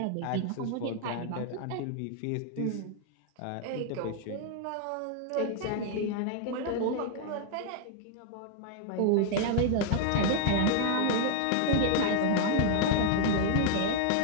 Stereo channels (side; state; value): both; different; correlation 0.00